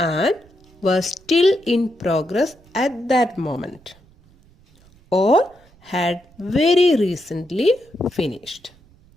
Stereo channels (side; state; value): right; noise; rumble, 29 dB below the sound